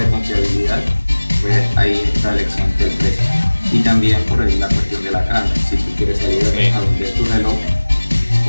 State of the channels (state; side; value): inverted; both; correlation -1.00